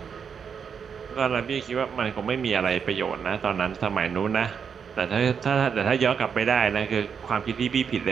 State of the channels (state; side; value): quieter; left; 6.8 dB